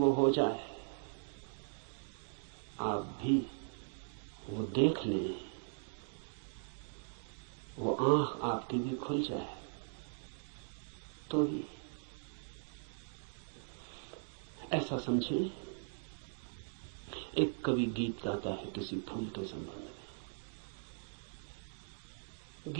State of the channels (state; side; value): silent; left; digital silence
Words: हो जाए, आप भी वो देख लें, वो आंख आपकी भी खुल जाए तो ही। ऐसा समझें, एक कवि गीत गाता है किसी फूल के संबंध में।